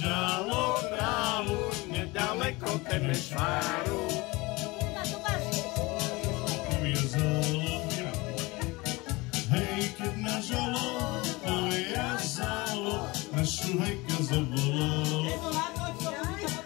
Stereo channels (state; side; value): quieter; right; 23.3 dB